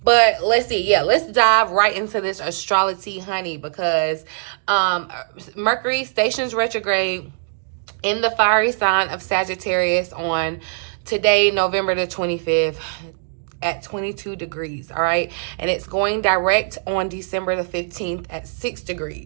But let's see, let's dive right into this astrology, honey, because Mercury stations retrograde in the fiery sign of Sagittarius on today, November the 25th, at 22 degrees, all right? And it's going direct on December the 15th at 6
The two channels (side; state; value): left; silent; digital silence